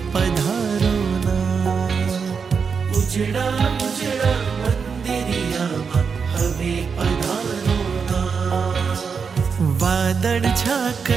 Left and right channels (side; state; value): left; quieter; 5.8 dB